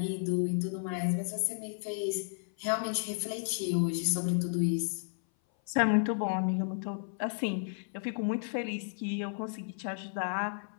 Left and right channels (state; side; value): silent; right; 56 dB below the other